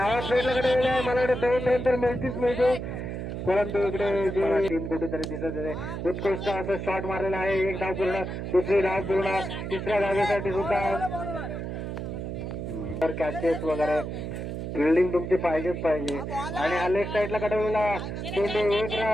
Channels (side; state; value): right; noise; hum, 5 dB below the sound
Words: भेटल्याकडे मला वाटतं 2 नंतर मिळते परंतु इकडे जे टीम कुठेतरी दिसत आहे. उत्कृष्ट असं शॉट मारलेला आहे. 1 धाव पूर्ण. दुसरी धाव पूर्ण. 3ऱ्या धावेसाठी सुद्धा कॅचेस वगैरे फिल्डिंग तुमची पाहिजेच पाहिजे. आणि हा लेफ्ट साईडला कडवलेला चेंडू 1